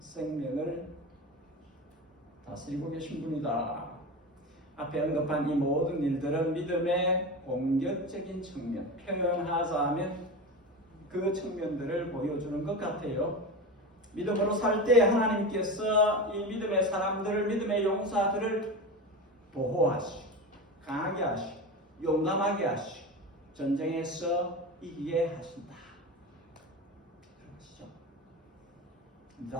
다스리고 계신 분이다. 앞에 언급한 이 모든 일들은 믿음의 공격적인 측면, 표현하자면 그 측면들을 보여주는 것 같아요. 믿음으로 살 때 하나님께서 이 믿음의 사람들을, 믿음의 용사들을 보호하시고 강하게 하시고 용감하게 하시고 전쟁에서 이기게 하신다. 그러시죠.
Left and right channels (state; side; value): normal; both; correlation 0.25